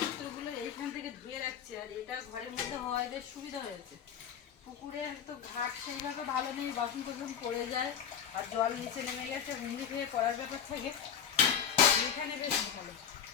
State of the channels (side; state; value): right; quieter; 8.1 dB